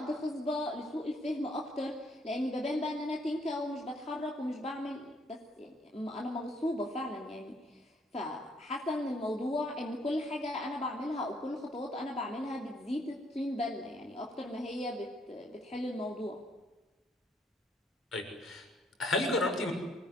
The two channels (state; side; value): normal; both; correlation 0.68